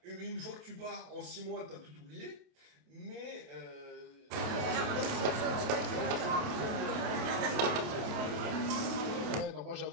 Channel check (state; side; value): late; left; 28 ms